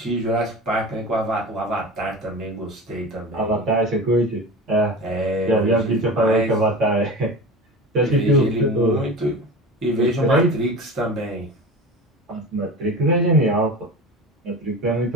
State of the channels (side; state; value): both; normal; correlation 0.32